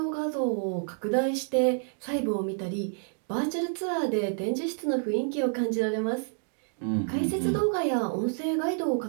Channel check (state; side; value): silent; left; 59 dB below the other